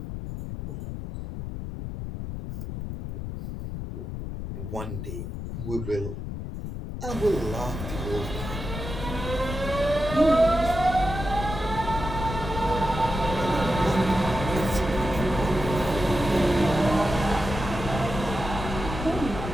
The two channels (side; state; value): left; noise; rumble, 6 dB below the sound